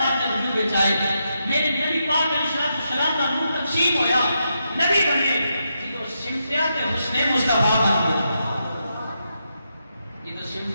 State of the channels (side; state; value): both; inverted; correlation -0.83